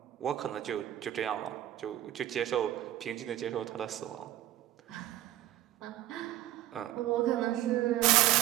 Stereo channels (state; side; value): quieter; left; 13.9 dB